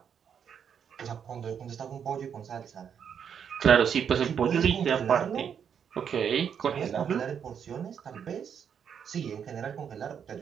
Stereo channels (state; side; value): quieter; left; 7.8 dB